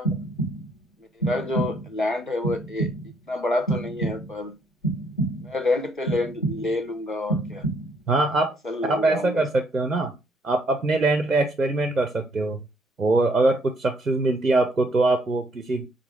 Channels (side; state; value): both; normal; correlation 0.69